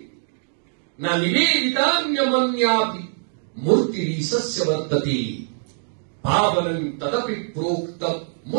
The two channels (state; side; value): silent; left; digital silence